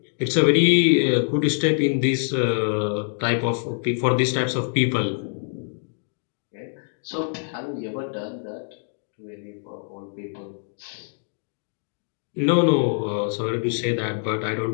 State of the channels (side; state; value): right; silent; digital silence